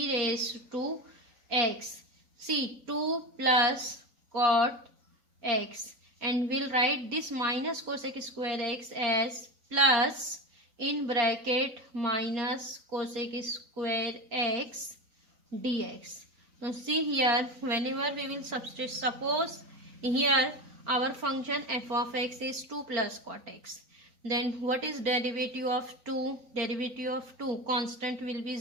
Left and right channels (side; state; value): left; late; 3.9 ms